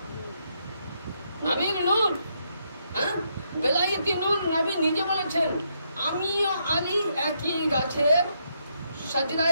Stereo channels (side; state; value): both; inverted; correlation -0.77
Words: নবীর নূর। হ্যাঁ, বেলায়েতি নূর। নবী নিজে বলেছেন আমিও আলী একই গাছের